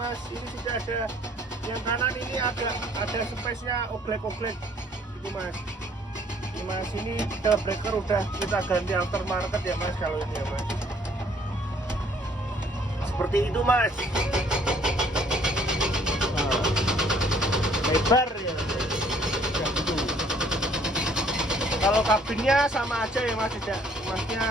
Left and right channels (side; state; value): both; normal; correlation 0.61